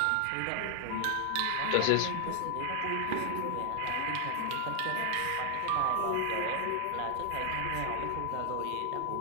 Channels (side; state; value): both; different; correlation 0.00